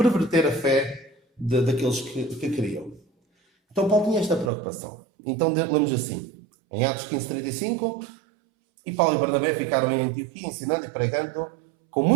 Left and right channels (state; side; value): drops out; left; at 4.5 s